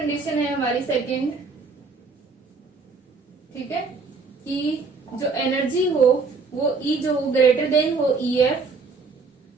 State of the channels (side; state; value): left; quieter; 4.4 dB